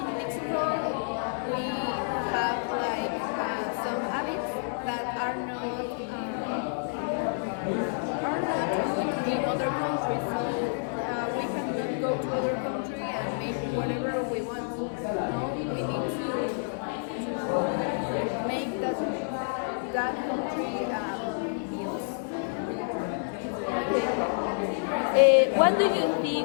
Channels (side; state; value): right; silent; digital silence